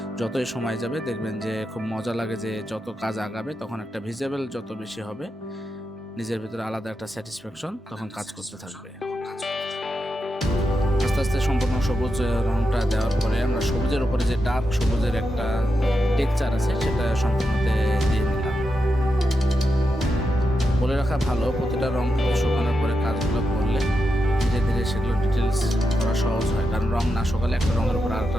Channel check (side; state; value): both; normal; correlation 0.87